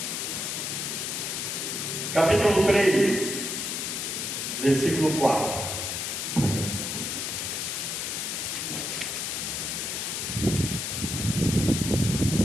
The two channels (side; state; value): left; noise; hiss, 2 dB below the sound